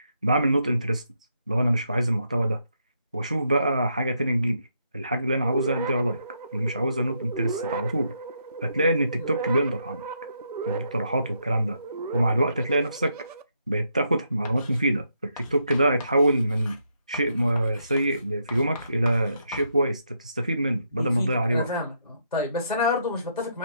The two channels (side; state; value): both; inverted; correlation -0.77